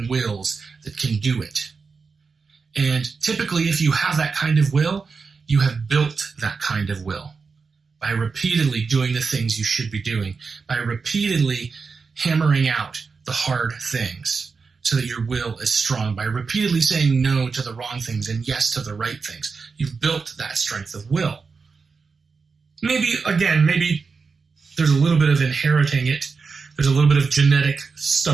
wills that can do it. And typically, if you have that kind of will, you have built that kind of will by repeatedly doing the things you should be doing, by repeatedly hammering out the hard things so that your will is strong, by repeatedly saying no to the wrong things and yes to the right things. You've built that strength of will. Maybe there's a little bit of inheriting it. There's a little bit of genetic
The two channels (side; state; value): left; quieter; 4.9 dB